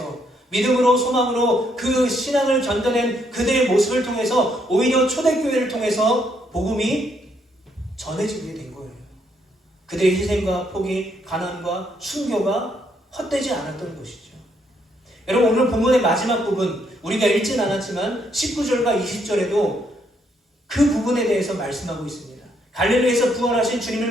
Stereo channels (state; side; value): normal; both; correlation 0.73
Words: 믿음으로 소망으로 그 신앙을 견뎌낸 그들의 모습을 통해서 오히려 초대교회를 통해서 복음이 전해지게 된 거예요. 그들의 희생과 포기, 가난과 순교가 헛되지 않았던 것이죠. 여러분, 오늘 본문의 마지막 부분 우리가 읽진 않았지만 19절과 20절에도 그 부분에 대해서 말씀하고 있습니다. 갈릴리에서 부활하신 주님을